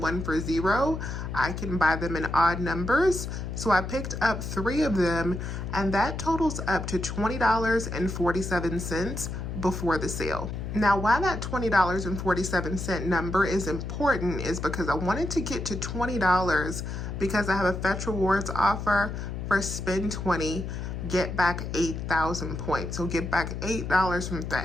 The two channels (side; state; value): left; noise; hum, 5 dB below the sound